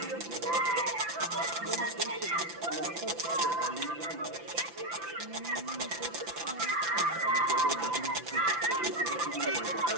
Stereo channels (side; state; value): left; late; 5.9 ms